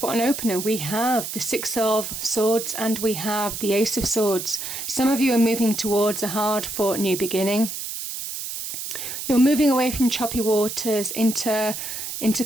what an opener. We have the 6 of Swords and we have the Ace of Swords. Some of you are moving towards a hard-fought new beginning. You're moving away from choppy waters into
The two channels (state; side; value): noise; right; hiss, 6 dB below the sound